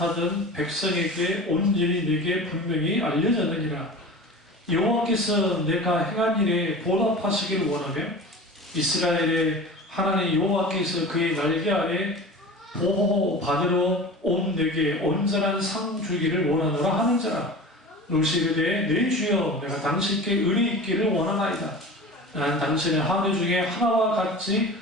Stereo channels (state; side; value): normal; both; correlation 0.35